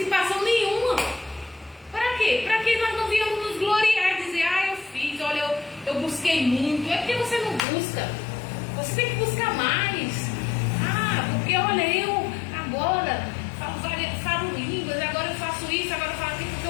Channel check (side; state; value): right; drops out; at 7.6 s